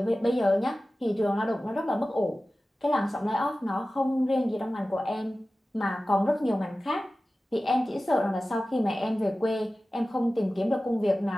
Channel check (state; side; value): normal; both; correlation 0.96